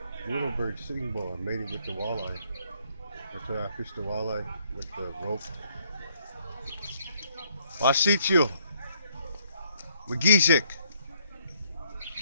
Little bird sitting bull. I made it with the walleye. That's why I fished the walleye with the rope. Wasitio. Magisic.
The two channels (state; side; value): inverted; both; correlation -0.69